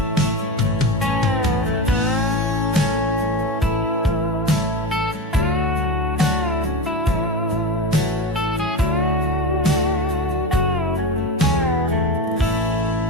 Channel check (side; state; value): both; normal; correlation 0.23